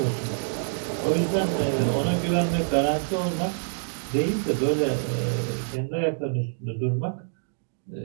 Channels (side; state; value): left; silent; digital silence